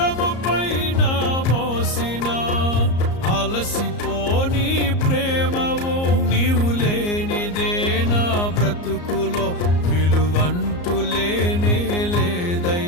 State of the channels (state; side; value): late; right; 34 ms